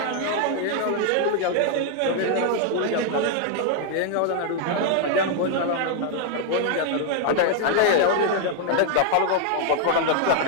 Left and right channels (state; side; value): different; both; correlation 0.00